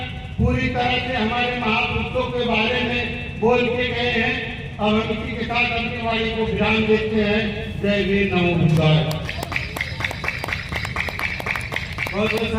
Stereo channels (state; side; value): identical; both; correlation 1.00